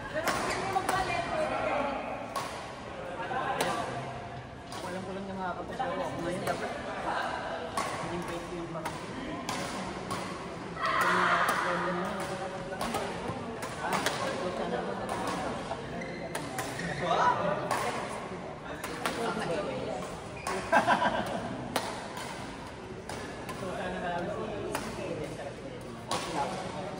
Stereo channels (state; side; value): identical; both; correlation 1.00